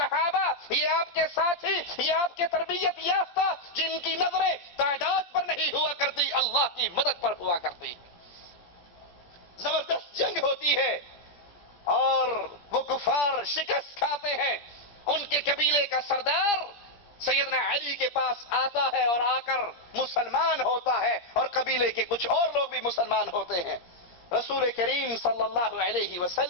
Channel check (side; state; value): right; late; 17 ms